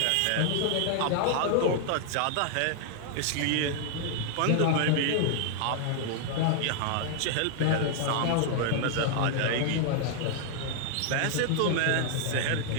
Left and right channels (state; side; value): different; both; correlation 0.00